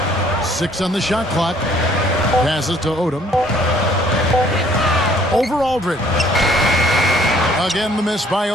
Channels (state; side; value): normal; both; correlation 0.60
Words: 6 on the shot clock. Passes to Odom. Over Aldridge. Again, the miss by